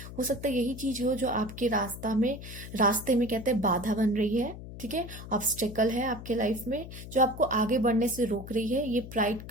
हो सकता है यही चीज हो जो आपके रास्ते में कहते हैं बाधा बन रही है। ठीक है, ऑब्स्टेकल है आपके लाइफ में, जो आपको आगे बढ़ने से रोक रही है, ये प्राइड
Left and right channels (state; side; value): noise; left; hum, 12 dB below the sound